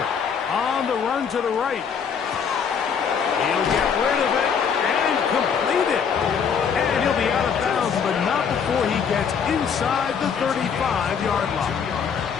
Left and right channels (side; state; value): right; quieter; 6.8 dB